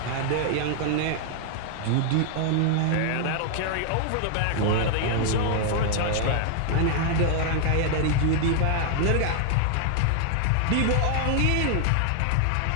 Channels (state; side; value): different; both; correlation 0.00